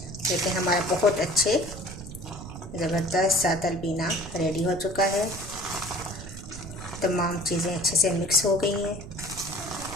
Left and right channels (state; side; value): noise; right; rumble, 11 dB below the sound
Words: देखिए हमारा बहुत अच्छे ज़बरदस्त सा तलबीना रेडी हो चुका है। तमाम चीज़ें अच्छे से मिक्स हो गई हैं।